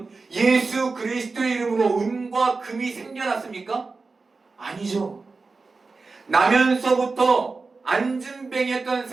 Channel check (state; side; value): quieter; left; 4.0 dB